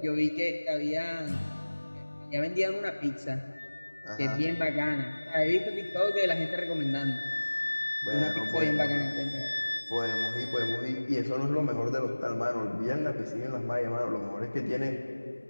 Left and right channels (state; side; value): inverted; both; correlation -1.00